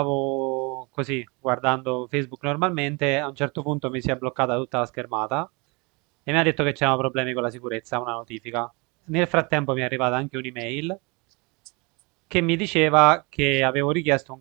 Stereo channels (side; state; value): left; quieter; 28.9 dB